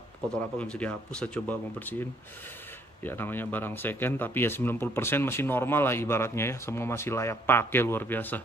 kotor apa nggak bisa dihapus. Saya coba mau bersihin. Ya namanya barang second, tapi ya 90% masih normal lah ibaratnya ya. Semua masih layak pakai, luar biasa.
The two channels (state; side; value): normal; both; correlation 0.65